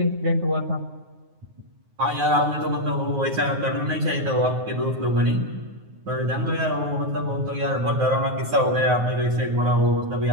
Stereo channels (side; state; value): left; late; 9.4 ms